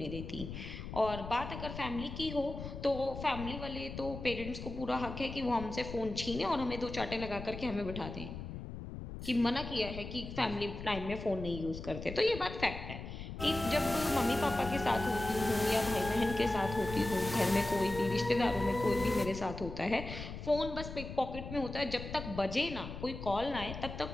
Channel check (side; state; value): left; noise; rumble, 9 dB below the sound